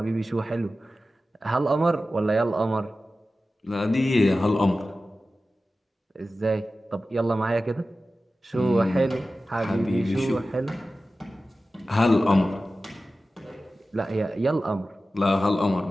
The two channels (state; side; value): normal; both; correlation 0.94